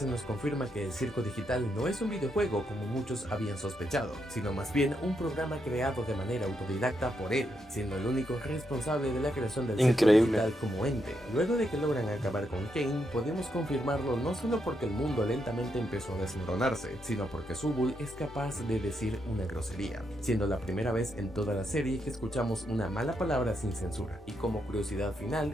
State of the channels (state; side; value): normal; both; correlation 0.80